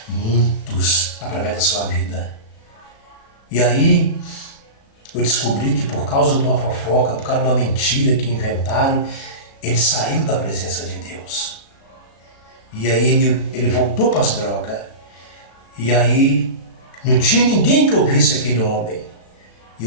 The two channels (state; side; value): late; right; 36 ms